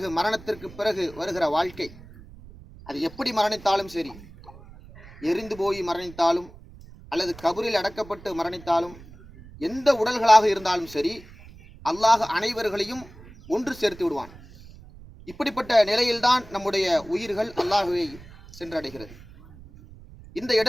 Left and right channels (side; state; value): right; noise; rumble, 20 dB below the sound